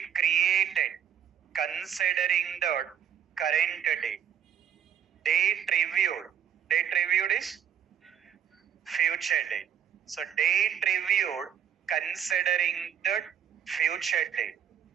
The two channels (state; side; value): quieter; left; 9.0 dB